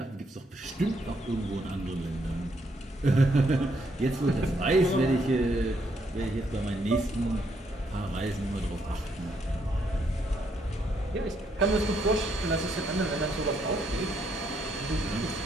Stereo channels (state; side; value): normal; both; correlation 0.73